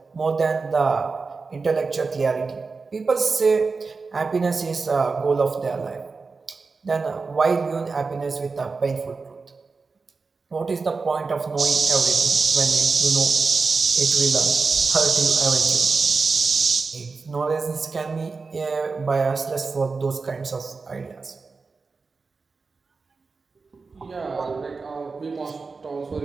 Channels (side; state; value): left; quieter; 4.4 dB